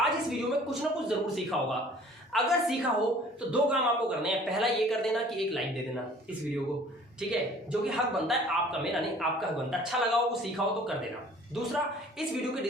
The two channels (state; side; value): normal; both; correlation 0.51